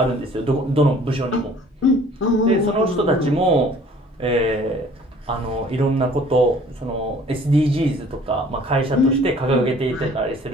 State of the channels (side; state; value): both; normal; correlation 0.53